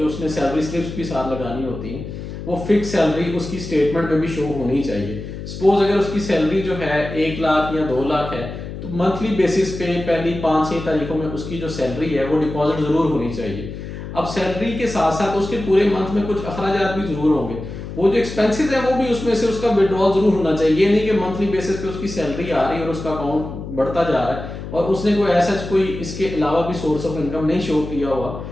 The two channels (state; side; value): noise; left; hum, 9 dB below the sound